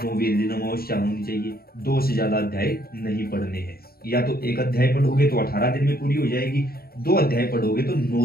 दिन अमावस्या होनी चाहिए। 2 से ज्यादा अध्याय नहीं पढ़ने हैं। या तो एक अध्याय पढ़ोगे तो 18 दिन में पूरी हो जाएगी, 2 अध्याय पढ़ोगे तो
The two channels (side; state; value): right; late; 0.44 ms